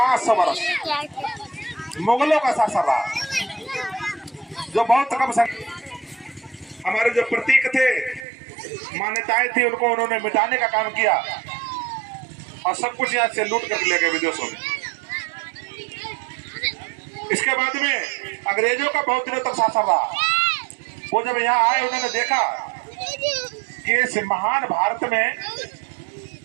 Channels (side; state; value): left; drops out; at 8.2 s